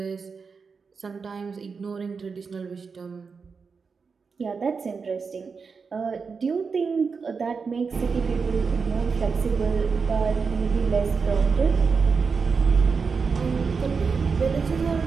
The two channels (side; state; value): left; quieter; 5.2 dB